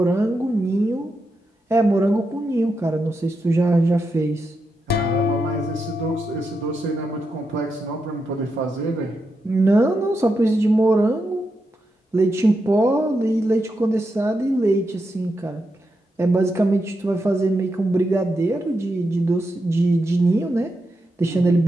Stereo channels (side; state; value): both; normal; correlation 0.86